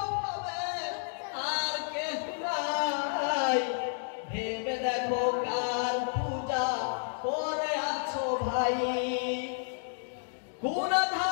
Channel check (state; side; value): silent; right; digital silence